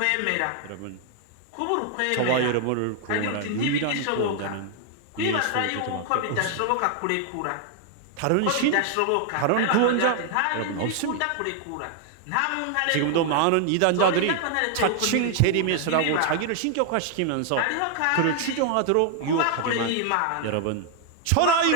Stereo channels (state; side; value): different; both; correlation 0.00